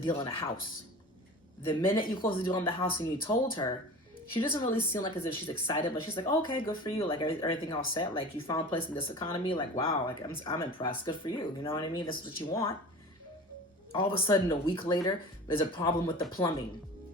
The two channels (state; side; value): normal; both; correlation 0.37